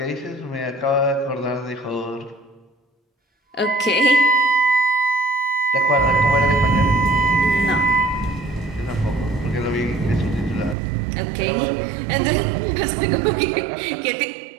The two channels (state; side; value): drops out; left; at 10.8 s